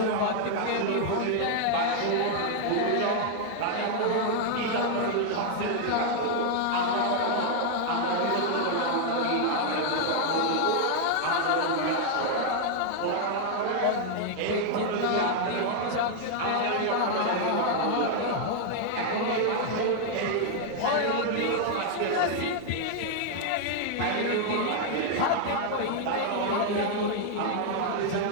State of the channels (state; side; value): different; both; correlation 0.00